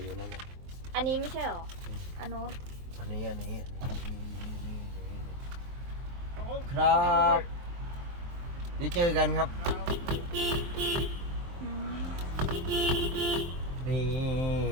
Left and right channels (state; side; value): late; left; 23 ms